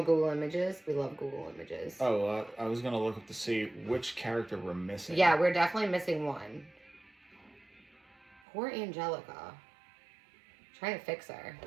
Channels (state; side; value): drops out; left; at 8.4 s